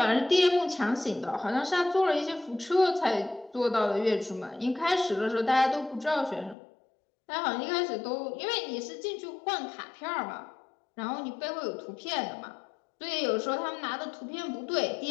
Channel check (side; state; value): right; drops out; at 6.6 s